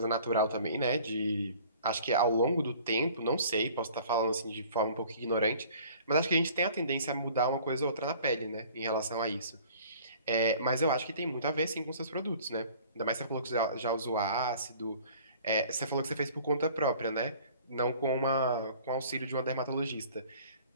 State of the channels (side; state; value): both; inverted; correlation -0.50